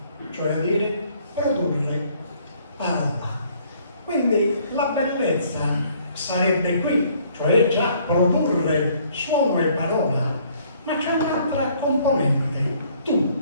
cioè a dire produrre parola. Quindi la bellezza sarebbe qui, cioè già produrre suono e parola, ma c'è un'altra componente,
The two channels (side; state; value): both; inverted; correlation -0.62